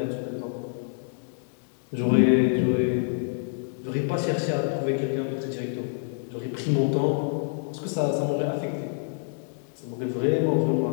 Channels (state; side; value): silent; right; digital silence